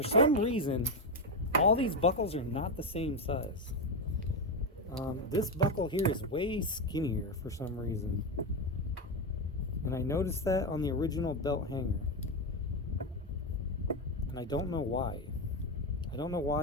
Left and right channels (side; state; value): both; normal; correlation 0.10